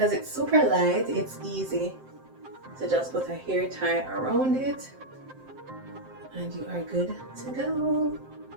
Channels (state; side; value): late; left; 7.7 ms